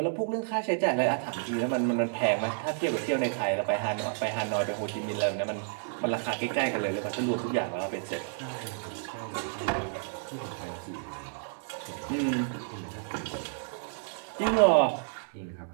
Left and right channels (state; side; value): silent; left; digital silence